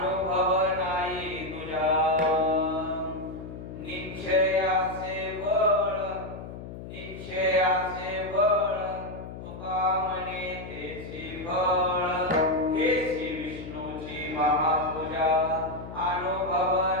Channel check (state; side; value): noise; left; hum, 11 dB below the sound